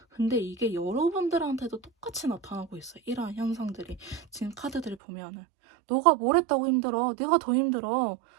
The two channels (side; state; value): left; drops out; at 5.0 s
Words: 근데 이게 여러분들한테도 똑같이 나타나고 있어요. 이러한 현상들이. 지금 카드들을 보면은. 너가 뭘 했다고 힘들어? 내가 더 힘들어.